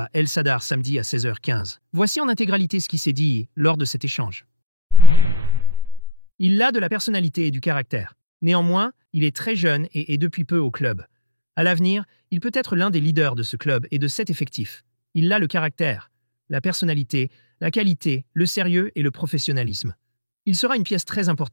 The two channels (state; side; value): inverted; both; correlation -0.52